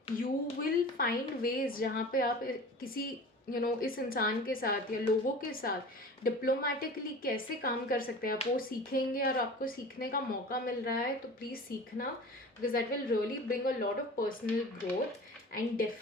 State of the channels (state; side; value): normal; both; correlation 0.38